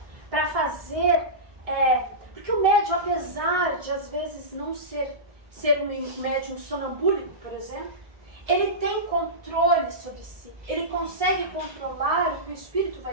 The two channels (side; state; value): left; late; 1.6 ms